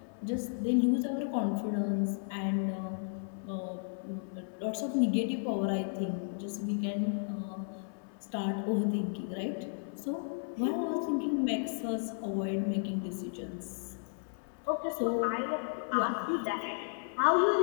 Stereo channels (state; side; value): silent; right; 55 dB below the other